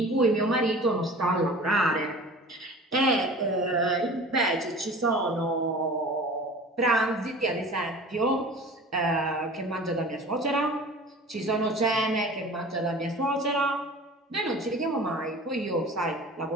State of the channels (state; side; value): normal; both; correlation 0.40